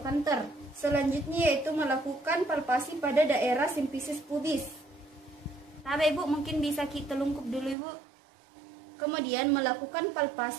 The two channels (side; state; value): left; drops out; at 7.8 s